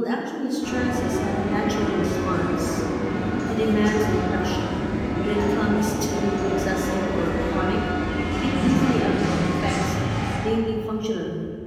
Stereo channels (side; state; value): both; identical; correlation 1.00